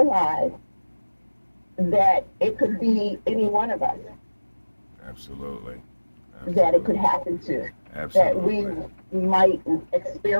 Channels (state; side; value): inverted; both; correlation -1.00